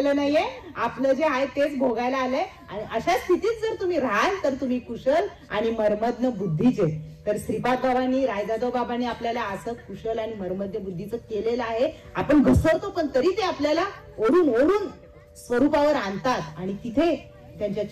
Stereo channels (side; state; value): both; identical; correlation 1.00